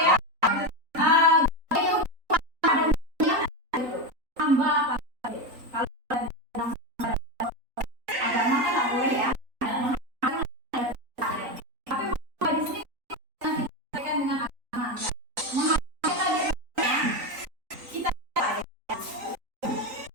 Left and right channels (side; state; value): left; late; 3.9 ms